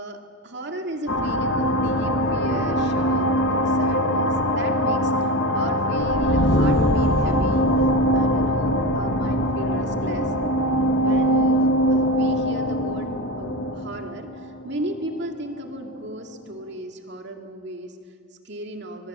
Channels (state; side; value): normal; both; correlation 0.22